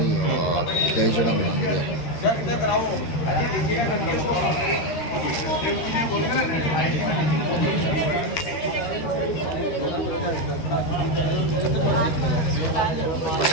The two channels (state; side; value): late; right; 13 ms